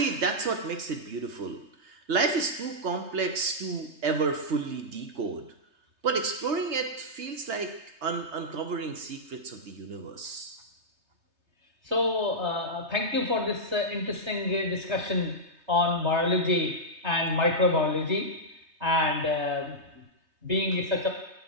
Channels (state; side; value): late; left; 3.2 ms